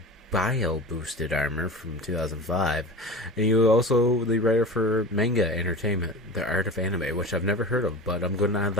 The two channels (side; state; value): both; normal; correlation 0.33